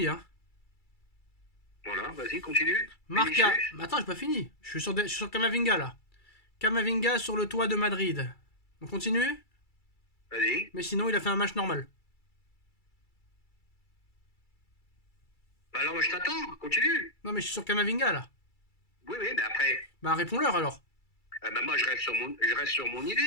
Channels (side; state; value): right; late; 2.3 ms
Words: hein. Voilà, vas-y, continue. Marca. Vinicius. Attends, j'ai pas fini. Je suis sur Camavinga là. Camavinga sur le toit de Madrid. On continue? Vas-y. Mais sinon, il a fait un match normal. Bah alors, moi, je t'attends. Continue. Non, mais je suis sur Camavinga là. Oui, oui, mais après, Bah, réponds-leur alors. bah, moi, je reste sur mon